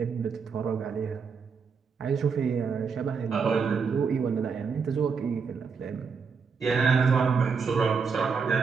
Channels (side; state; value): left; quieter; 5.6 dB